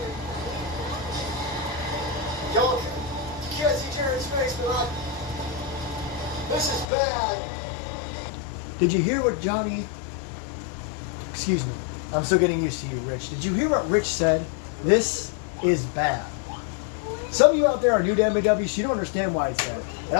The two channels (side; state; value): right; drops out; at 6.9 s